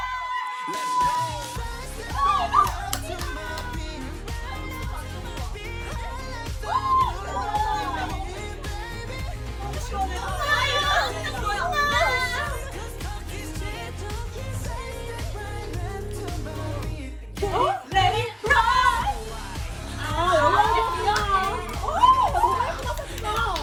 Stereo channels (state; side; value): identical; both; correlation 1.00